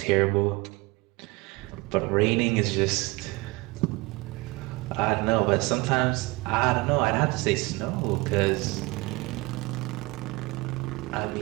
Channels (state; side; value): quieter; left; 23.5 dB